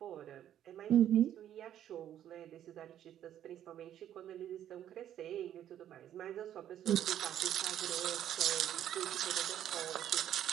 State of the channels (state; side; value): quieter; left; 11.0 dB